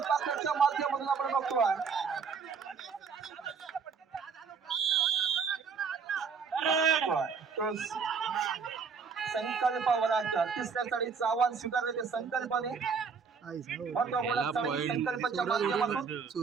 बाकरच्या माध्यमातून आपण बघतोय. तो संकल्प वराडकर तिसऱ्या चढीचं आव्हान स्वीकारले ते संकल्पने महत्वपूर्ण चढी संकल्पाच्या माध्यमातून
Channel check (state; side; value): quieter; left; 5.8 dB